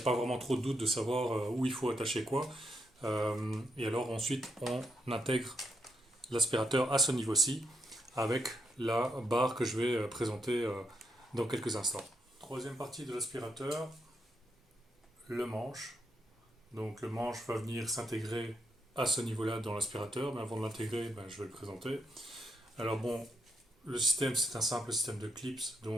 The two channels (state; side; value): normal; both; correlation 0.79